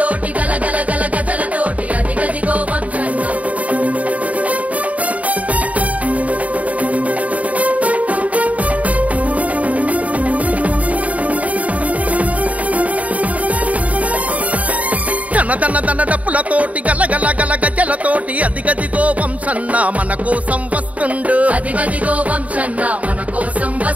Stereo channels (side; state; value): left; late; 0.069 ms